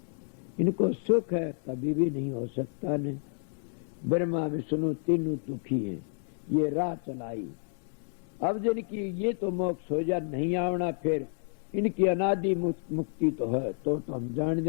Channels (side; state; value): right; silent; 58 dB below the other